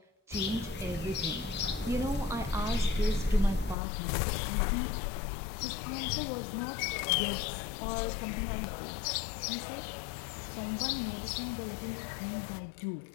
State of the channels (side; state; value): right; drops out; at 3.8 s